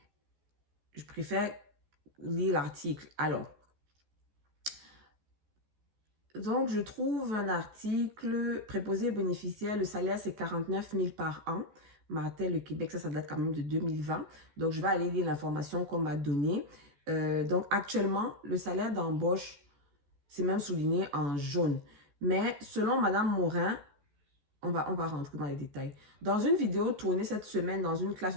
Je préfère lire l'article. Alors, donc je trouve un article préposé bénéficiaire, le salaire c'est 49 000 par an. Martel, le Québec, ça date quand même de 2020. Donc, je vais aller lire l'information qu'on m'a donnée. Donc, actuellement, le salaire d'embauche, c'est même souligné en jaune. Mais selon Madame Morin, on va rentrer dans les détails. Dans une vidéo tournée cette semaine dans une classe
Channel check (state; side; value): late; left; 14 ms